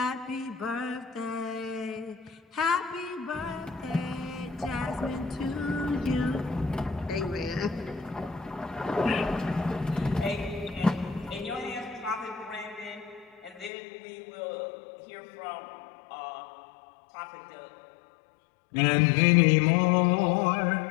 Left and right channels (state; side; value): drops out; right; at 13.7 s